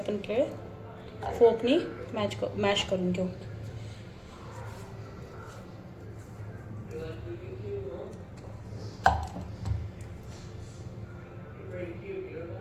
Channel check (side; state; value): both; identical; correlation 1.00